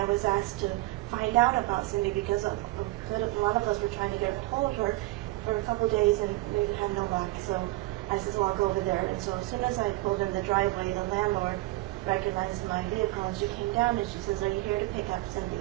was asked to find out about Cindy, because a lot of us were trying to get a hold of her for a couple of days, and we had no luck. So I said, well, I'll go over there. And so as soon as I pulled in the driveway, the landlord recognized my vehicle, and she came down, and she says, are you here to pick up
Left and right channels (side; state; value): left; quieter; 19.8 dB